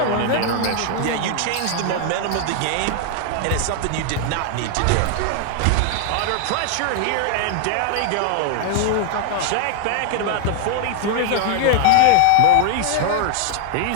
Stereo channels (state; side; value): different; both; correlation 0.00